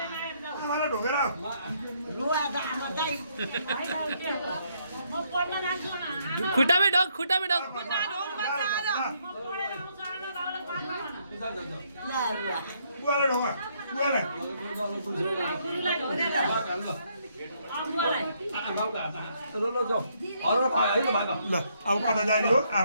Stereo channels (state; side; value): inverted; both; correlation -0.72